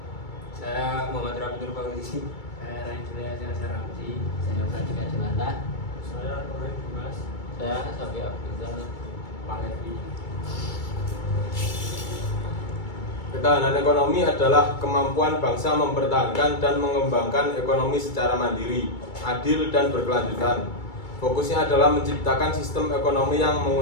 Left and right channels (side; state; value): right; late; 2.3 ms